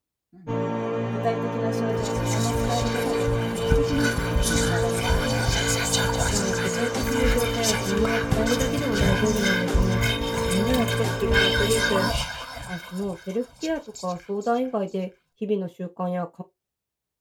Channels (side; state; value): both; identical; correlation 1.00